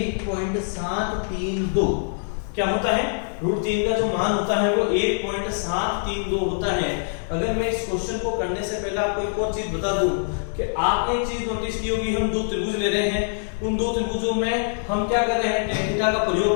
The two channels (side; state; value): right; silent; 60 dB below the other